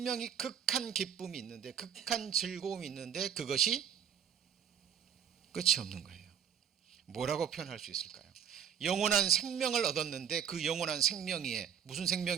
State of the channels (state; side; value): quieter; left; 8.6 dB